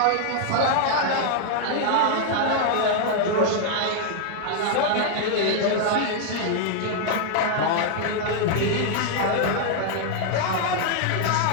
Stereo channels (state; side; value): different; both; correlation 0.00